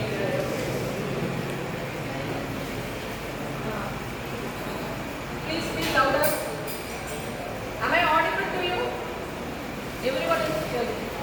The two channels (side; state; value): both; identical; correlation 1.00